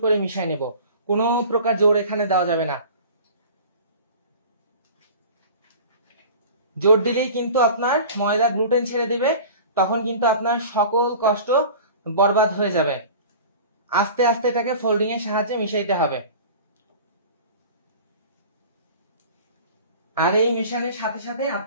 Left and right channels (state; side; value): inverted; both; correlation -0.40